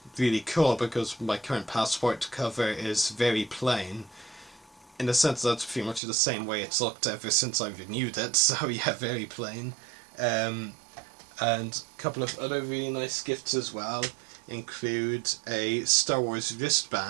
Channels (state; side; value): drops out; left; at 6.0 s